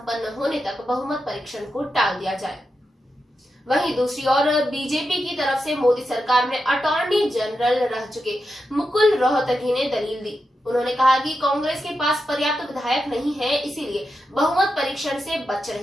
होने तक बहुमत परीक्षण को टाल दिया जाए। वहीं दूसरी ओर बीजेपी की तरफ से मोदी सरकार में अटॉर्नी जनरल रह चुके मुकुल रोहतगी ने दलील दी। उन्होंने कहा कि कांग्रेस के पास पर्याप्त विधायक नहीं है, इसीलिए बहुमत परीक्षण से बच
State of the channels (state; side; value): normal; both; correlation 0.88